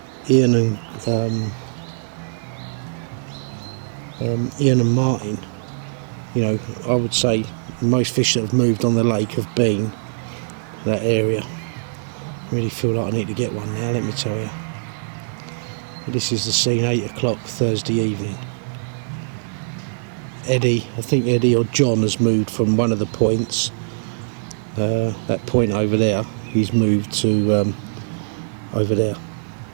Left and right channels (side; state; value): left; silent; digital silence